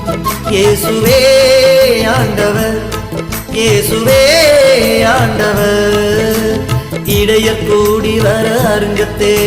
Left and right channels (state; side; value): identical; both; correlation 1.00